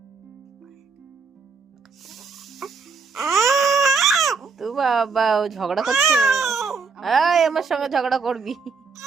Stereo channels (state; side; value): quieter; left; 4.7 dB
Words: তো বাবা ও ঝগড়া করছে। এই আমার সঙ্গে ঝগড়া করবি?